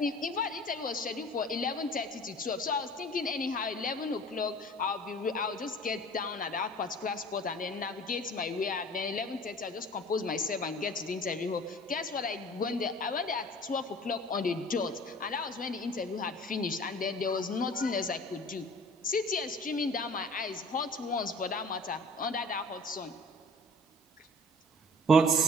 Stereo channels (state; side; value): normal; both; correlation 0.45